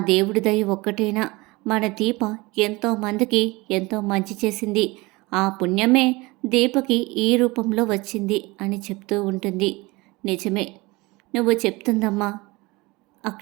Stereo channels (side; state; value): left; quieter; 23.1 dB